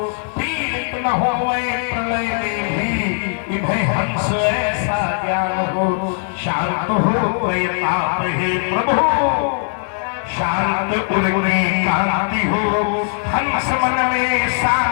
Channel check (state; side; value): silent; right; digital silence